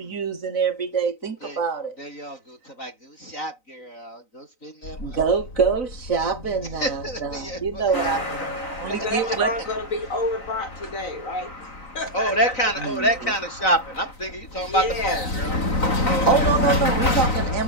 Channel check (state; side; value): late; right; 3.9 ms